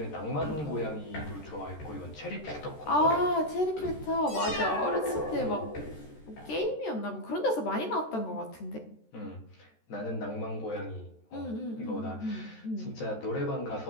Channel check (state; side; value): late; right; 13 ms